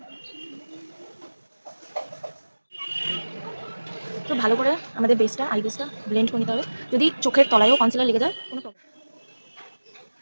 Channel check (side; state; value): both; inverted; correlation -1.00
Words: তো ভালো করে আমাদের বেসটা, আই বেসটা ব্লেন্ড করে নিতে হবে। যদি চোখের তলায়ও কনসিলার লেগে যায় কোনো প্রবলেম,